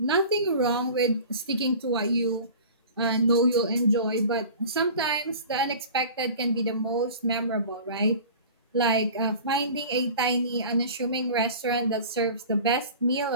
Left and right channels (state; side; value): inverted; both; correlation -0.40